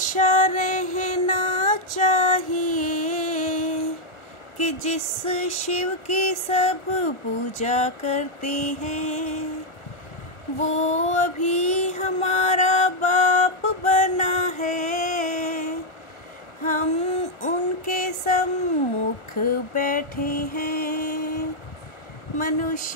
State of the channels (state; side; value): late; right; 1.4 ms